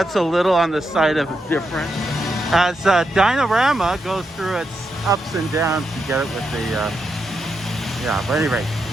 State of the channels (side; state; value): both; normal; correlation 0.84